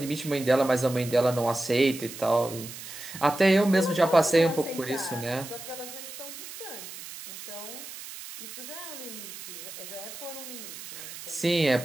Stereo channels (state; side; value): noise; right; hiss, 12 dB below the sound